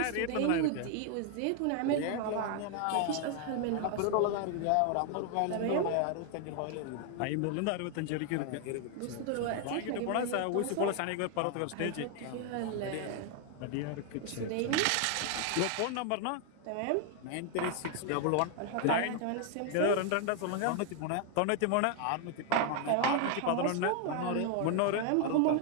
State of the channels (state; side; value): different; both; correlation 0.00